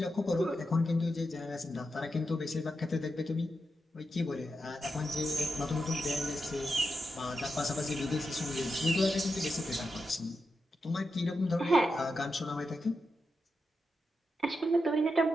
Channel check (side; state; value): both; normal; correlation 0.87